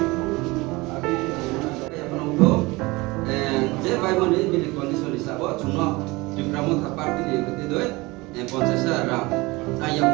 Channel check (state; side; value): quieter; left; 23.0 dB